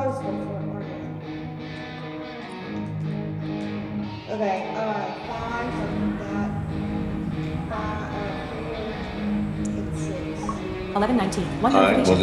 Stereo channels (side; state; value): both; identical; correlation 1.00